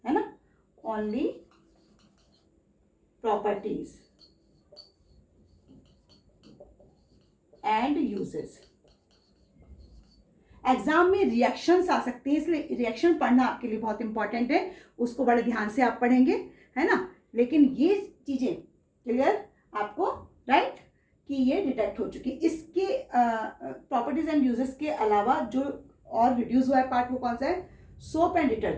है ना, only properties and uses. Exam में रिएक्शंस आ सकते हैं, इसलिए रिएक्शन पढ़ना आपके लिए बहुत इंपॉर्टेंट है, उसको बड़े ध्यान से आप पढ़ेंगे, है ना। लेकिन ये चीजें क्लियर आपको, राइट, कि ये डिटेक्ट हो चुकी। इसके प्रॉपर्टीज एंड यूजेस के अलावा जो और रिड्यूस हुआ है पार्ट, वो कौन सा है, सोप एंड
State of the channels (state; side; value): identical; both; correlation 1.00